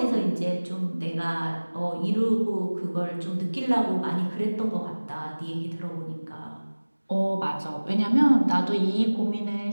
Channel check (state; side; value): inverted; both; correlation -1.00